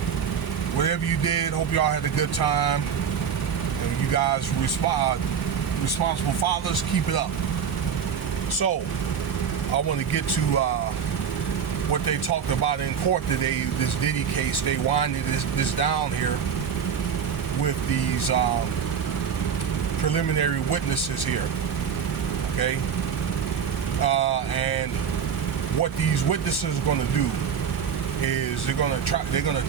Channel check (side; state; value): left; quieter; 7.3 dB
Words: Whatever you did, hope y'all had a good time. And you guys responsible fathers, keep it up. So, I want to get to what they talked about in court today, this Diddy case. They winded this down here with these preliminary witnesses here, okay? And what these witnesses are going to do is they're going to